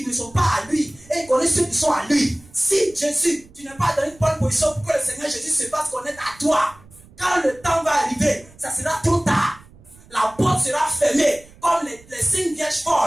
ne sont pas à lui. Et il connaît ceux qui sont à lui. Si Jésus, tu n'es pas dans une bonne position pour que le Seigneur Jésus se fasse connaître à toi, quand le temps va arriver, ça sera trop tard. La porte sera fermée. Comme les 5 vierges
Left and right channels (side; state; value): right; noise; rumble, 25 dB below the sound